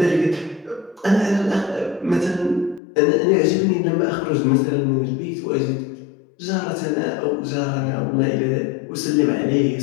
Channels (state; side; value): drops out; right; at 2.8 s